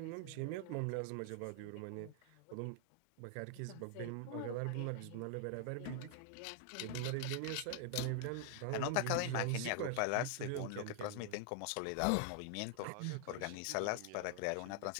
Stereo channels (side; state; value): both; different; correlation 0.00